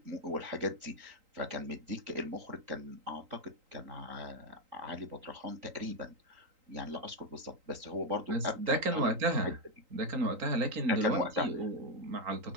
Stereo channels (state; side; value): late; left; 3.8 ms